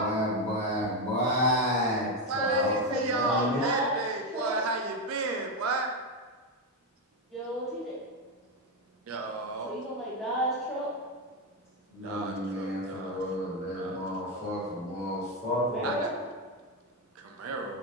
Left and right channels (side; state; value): both; normal; correlation 0.08